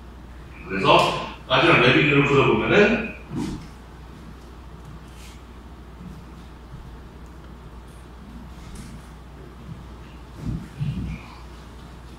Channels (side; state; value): both; identical; correlation 1.00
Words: 그래서 마지막 레비뉴를 그려보면은